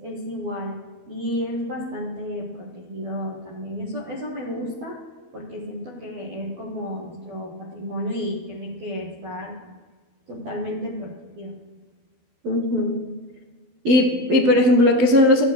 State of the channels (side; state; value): left; late; 12 ms